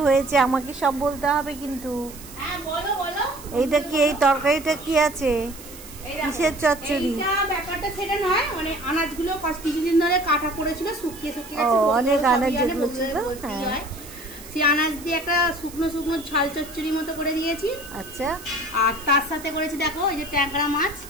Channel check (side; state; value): right; noise; hiss, 17 dB below the sound